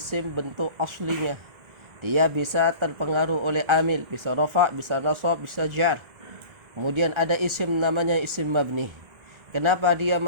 bentuk aslinya. Dia bisa terpengaruh oleh amil, bisa rafa, bisa nasab, bisa jar. Kemudian ada isim namanya isim mabni. Kenapa dia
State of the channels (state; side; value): late; left; 1.4 ms